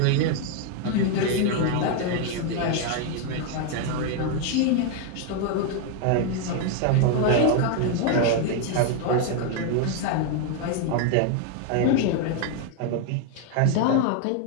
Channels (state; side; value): different; both; correlation 0.01